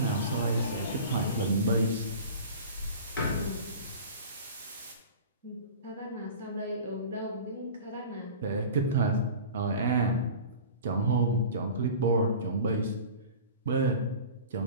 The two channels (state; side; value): inverted; both; correlation -0.38